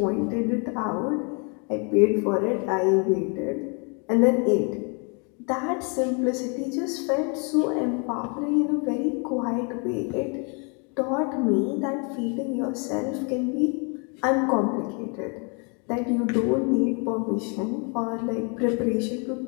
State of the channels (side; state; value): right; quieter; 35.5 dB